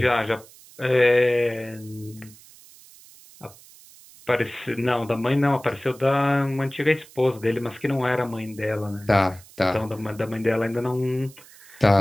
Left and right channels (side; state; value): right; noise; hiss, 23 dB below the sound